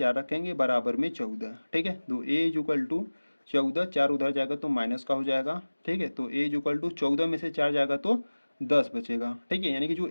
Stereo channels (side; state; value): both; inverted; correlation -1.00